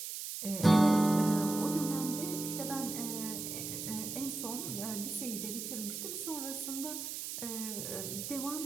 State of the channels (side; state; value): right; noise; hiss, 6 dB below the sound